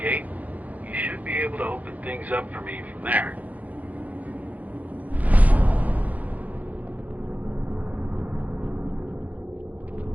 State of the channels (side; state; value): left; late; 0.076 ms